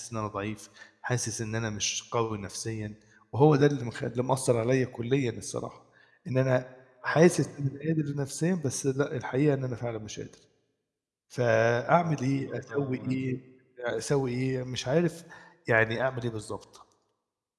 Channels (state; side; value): identical; both; correlation 1.00